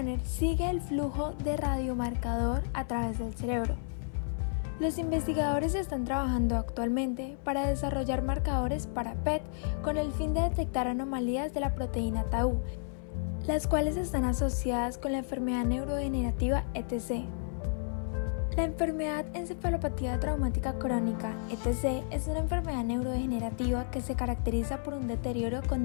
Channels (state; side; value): silent; right; 55 dB below the other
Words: sigue el flujo de radiomarcador a través del cerebro. Los investigadores están trabajando actualmente para desarrollar marcadores para PET con el fin de detectar anomalías de la proteína tau, las cuales están asociadas con la enfermedad neurodegenerativa ETC. La enfermedad encefalopatía traumática crónica, ETC, es una enfermedad neurodegenerativa que se caracteriza por un deterioro